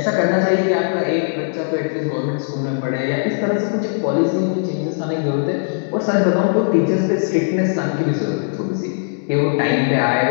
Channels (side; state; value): right; silent; digital silence